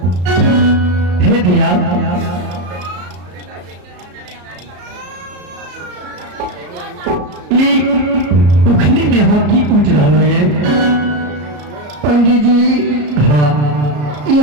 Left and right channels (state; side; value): late; left; 34 ms